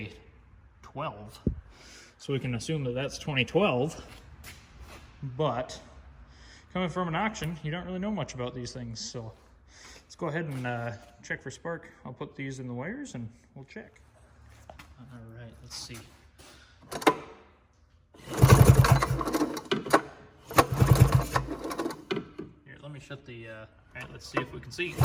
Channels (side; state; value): both; identical; correlation 1.00